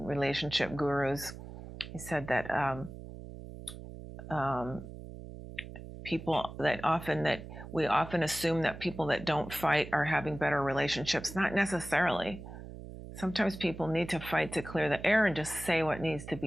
gurus, he said that we often assume that people that don't fight are having better relationships. Not necessarily. Sometimes people need to fight to clear the air and just say what needs to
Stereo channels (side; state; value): right; noise; hum, 12 dB below the sound